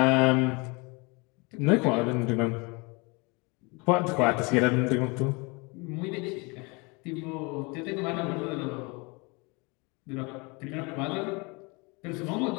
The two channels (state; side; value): quieter; right; 28.7 dB